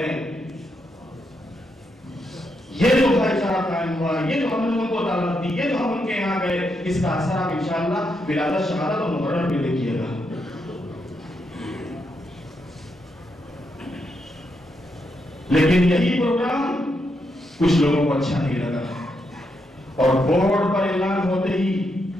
یہ جو بھائی چارہ قائم ہوا، یہ جو ہم نے ان کو دعوت دی، یہ جو ہم ان کے یہاں گئے، اس کا اثر آپ انشاءاللہ ولادت شہادت اور محرم میں دیکھیے گا۔ لیکن یہی پروگرام کچھ لوگوں کو اچھا نہیں لگا اور بورڈ پر اعلان ہوتے ہی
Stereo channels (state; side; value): normal; both; correlation 0.81